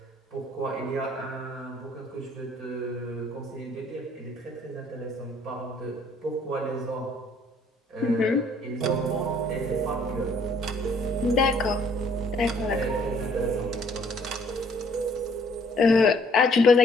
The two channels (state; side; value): normal; both; correlation 0.62